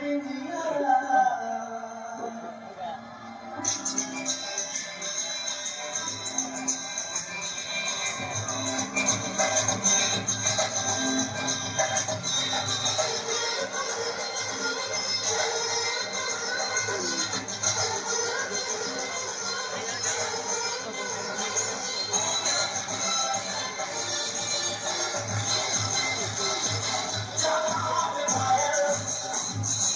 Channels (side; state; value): both; identical; correlation 1.00